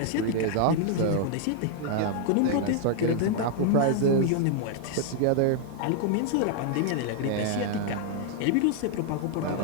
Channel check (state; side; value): different; both; correlation 0.00